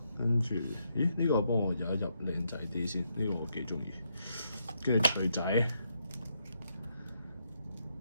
跟住，呢個幫我入一入靚仔啲先，呢個我幾中意。跟住錘仔，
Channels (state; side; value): inverted; both; correlation -0.78